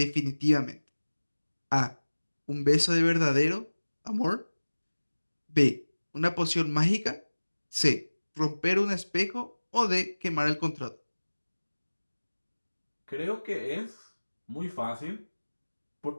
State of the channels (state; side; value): inverted; both; correlation -1.00